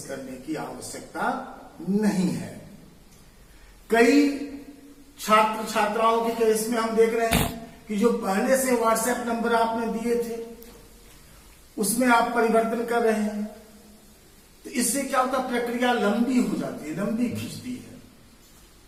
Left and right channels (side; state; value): both; identical; correlation 1.00